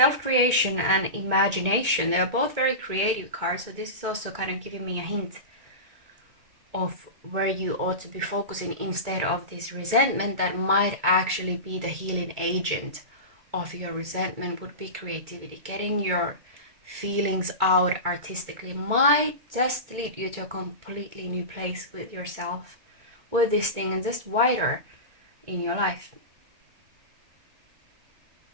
and imagination. They are both very creative cards, so this is also kind of giving me a hint of where you ought to be focusing instead of this resentment that might actually be the healing agent of your resentment. Would be creativity. Getting your feelings out artistically might just lead you to a completely new place with yourself, with this thing, and just wider in your life.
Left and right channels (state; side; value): late; left; 2.2 ms